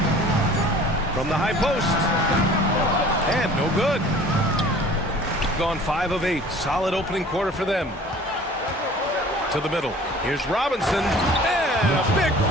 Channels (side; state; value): both; normal; correlation 0.47